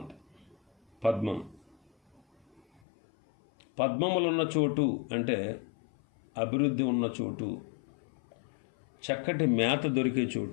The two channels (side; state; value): right; drops out; at 2.8 s